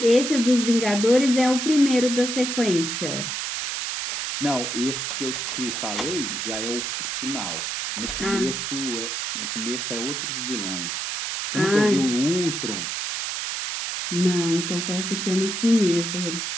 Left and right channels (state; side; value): noise; right; hiss, 3 dB below the sound